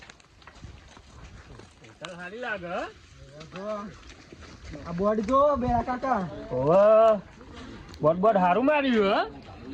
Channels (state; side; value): identical; both; correlation 1.00